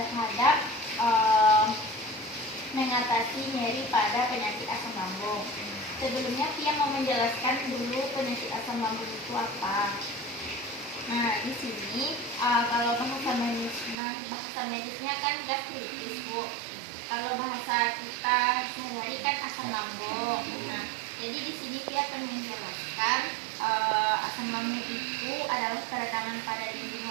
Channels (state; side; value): drops out; left; at 14.0 s